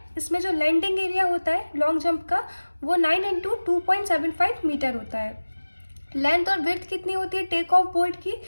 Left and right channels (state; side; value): inverted; both; correlation -1.00